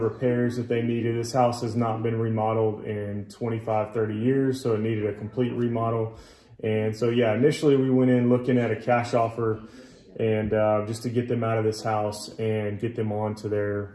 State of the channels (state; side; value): identical; both; correlation 1.00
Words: repairs that they needed, this house has not been remodeled in 25, 30 years, so it needed a complete remodel. And so yeah, initially we went in looking at a cash offer and just to get them out of this house and get them on to their